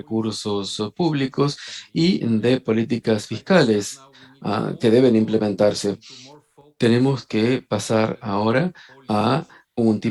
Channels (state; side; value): identical; both; correlation 1.00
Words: públicos y de políticas fiscales que deben implementarse. Tenemos que pasar ahora a un